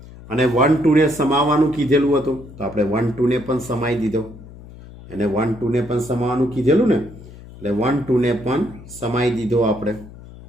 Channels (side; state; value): left; noise; hum, 18 dB below the sound